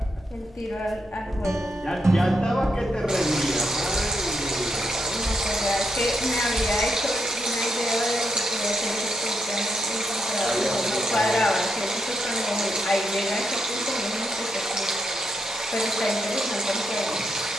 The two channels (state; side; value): normal; both; correlation 0.81